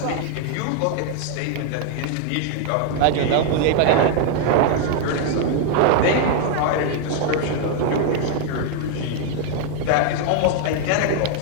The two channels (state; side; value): different; both; correlation 0.00